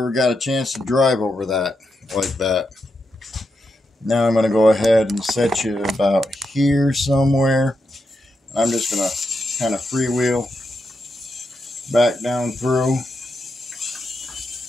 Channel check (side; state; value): both; normal; correlation 0.85